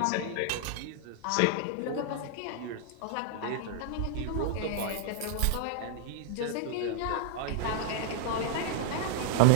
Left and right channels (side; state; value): both; different; correlation -0.01